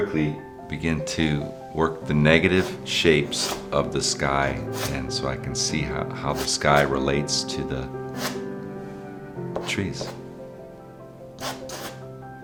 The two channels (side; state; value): both; identical; correlation 1.00